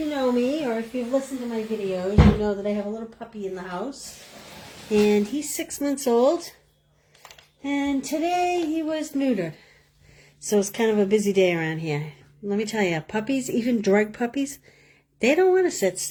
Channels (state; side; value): identical; both; correlation 1.00